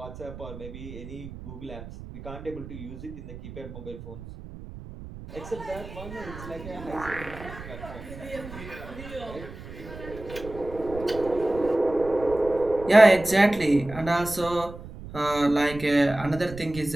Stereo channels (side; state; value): right; noise; rumble, 13 dB below the sound